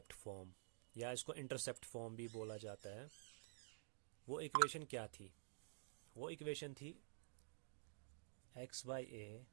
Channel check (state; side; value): silent; left; digital silence